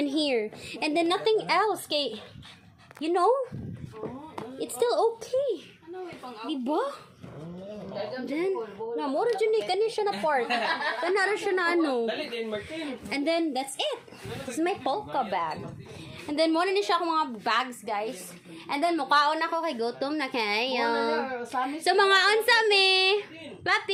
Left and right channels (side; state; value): both; identical; correlation 1.00